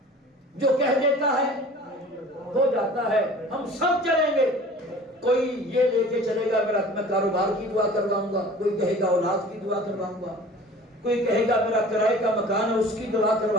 جو کہہ دیتا ہے ہو جاتا ہے، ہم سب چلیں گے. کوئی یہ لے کے چلے گا میرا میں کاروبار کی دعا کرواؤں گا، کوئی کہے گا اولاد کی دعا کرواؤں گا، کوئی کہے گا میرا کرائے کا مکان ہے اس کی دعا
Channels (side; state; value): both; normal; correlation 0.44